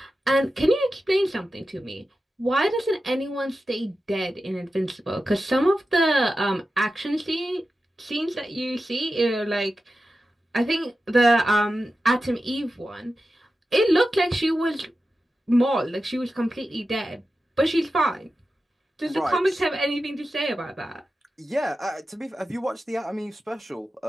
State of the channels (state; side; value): normal; both; correlation 0.92